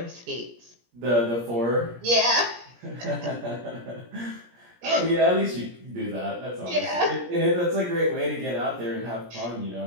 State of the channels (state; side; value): late; left; 17 ms